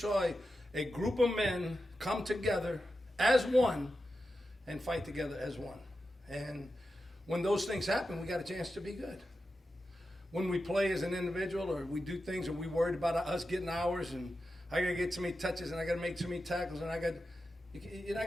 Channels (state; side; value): normal; both; correlation 0.90